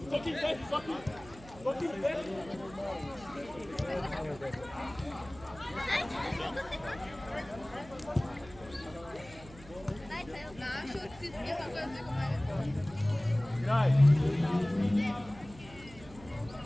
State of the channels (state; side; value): noise; right; hum, 19 dB below the sound